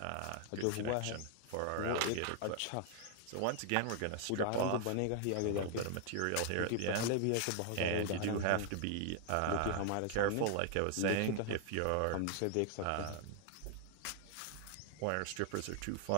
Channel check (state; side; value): different; both; correlation 0.00